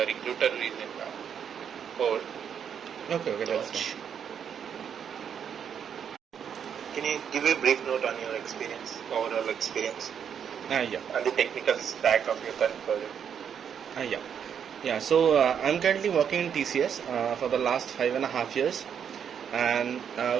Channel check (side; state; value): left; quieter; 8.0 dB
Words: recruiter is in hold. Okay, okay, to that's watch. fine. Can you give a brief note on your experience, overall experience, Yeah. and the technical stack of your current project? Yeah. Yeah, so I'm currently working in TCS for the last 5.5 years, and